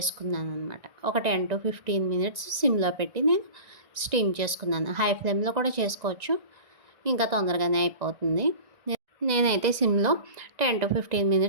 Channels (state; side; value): late; left; 1.9 ms